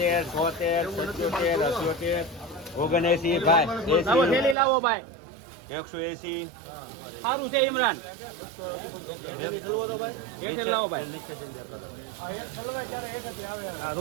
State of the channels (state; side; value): drops out; left; at 4.5 s